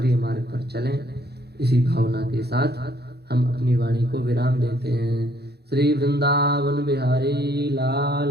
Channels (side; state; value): left; late; 0.47 ms